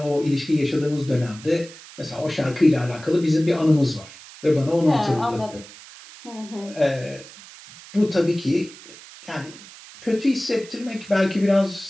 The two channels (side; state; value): right; noise; hiss, 18 dB below the sound